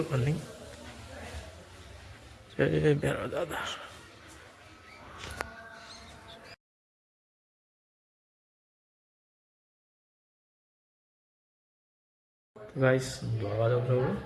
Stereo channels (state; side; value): identical; both; correlation 1.00